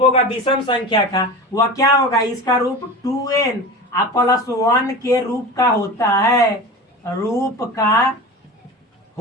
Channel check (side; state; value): both; normal; correlation 0.31